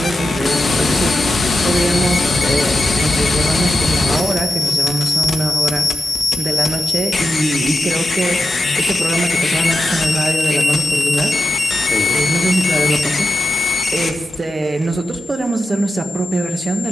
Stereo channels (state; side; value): normal; both; correlation 0.90